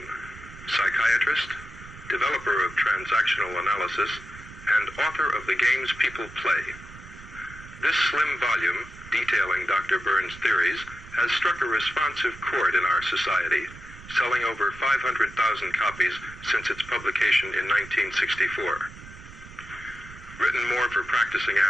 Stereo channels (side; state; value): right; noise; rumble, 17 dB below the sound